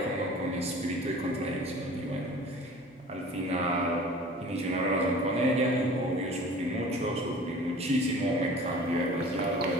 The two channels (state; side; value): normal; both; correlation 0.43